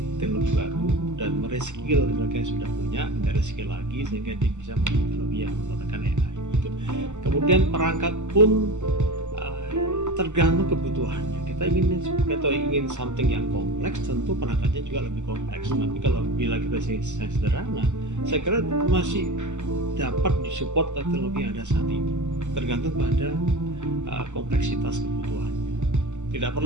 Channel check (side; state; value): left; late; 0.84 ms